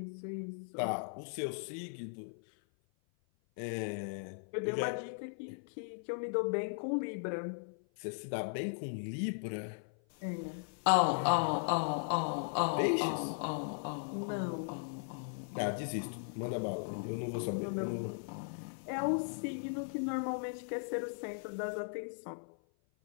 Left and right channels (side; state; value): right; silent; 53 dB below the other